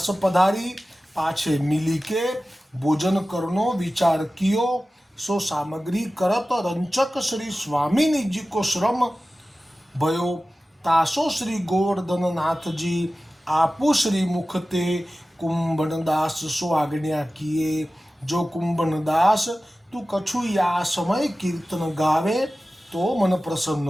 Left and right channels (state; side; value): normal; both; correlation 0.95